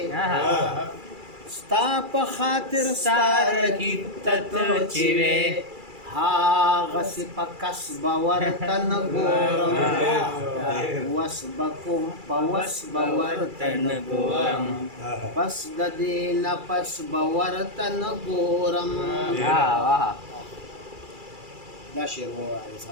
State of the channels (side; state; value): left; late; 2.3 ms